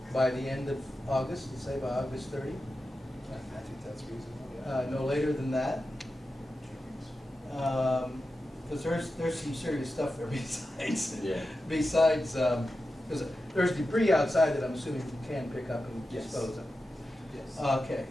by the end of August, let's say by August 30. I think that's reasonable, No later than that. Because there's some serious stuff there besides, Yeah. besides, because there's debris outside that I'm assuming you can pick up and Yes. dispose of. Yes. Okay,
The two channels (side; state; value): both; normal; correlation 0.91